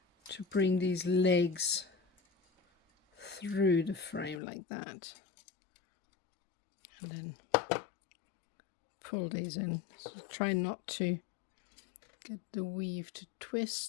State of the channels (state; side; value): drops out; right; at 4.4 s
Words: to bring these legs through the frame like that, and then pull these in. So try not to get the weave to